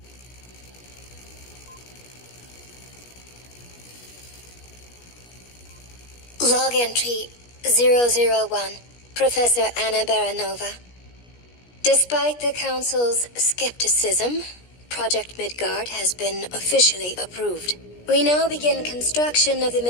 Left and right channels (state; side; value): late; right; 17 ms